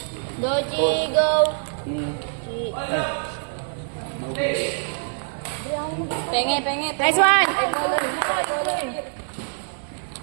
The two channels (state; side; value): silent; left; 60 dB below the other